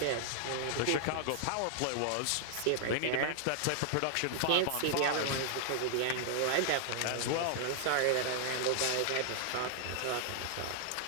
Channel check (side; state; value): both; different; correlation -0.01